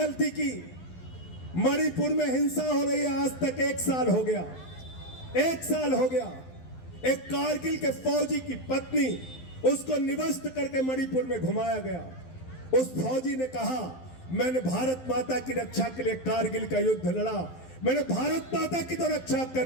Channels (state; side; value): late; right; 12 ms